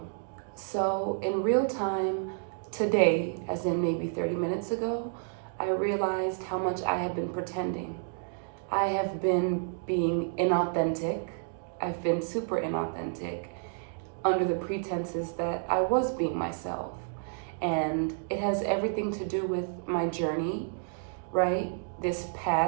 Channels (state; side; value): silent; left; digital silence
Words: So, in real time today, as in maybe 30 minutes ago, I realized how much I had been pretending. I have been being inauthentic. I've been super inauthentic under the pretenses that I was being myself. And it has everything to do with my journey, right? This